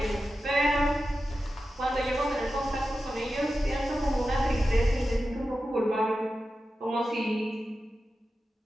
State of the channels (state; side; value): normal; both; correlation 0.92